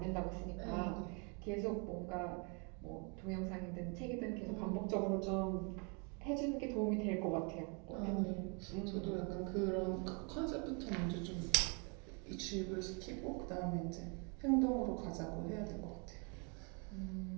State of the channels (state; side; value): quieter; left; 35.0 dB